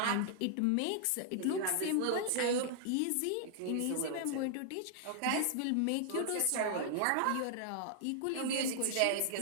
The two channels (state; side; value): different; both; correlation -0.01